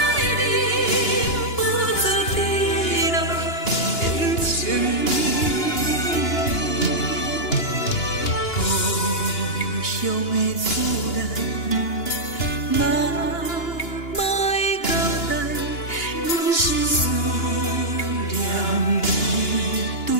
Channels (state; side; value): late; right; 2.9 ms